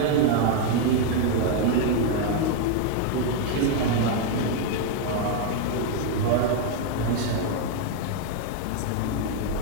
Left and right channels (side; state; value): both; different; correlation 0.00